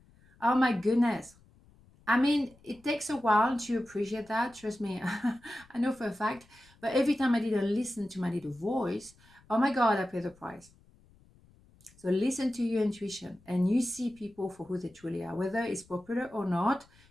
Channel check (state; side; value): noise; left; rumble, 28 dB below the sound